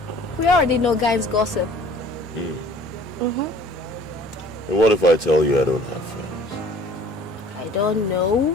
We already know guys gossip. And what if I tell you I don't have friends? I don't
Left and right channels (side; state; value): both; normal; correlation 0.51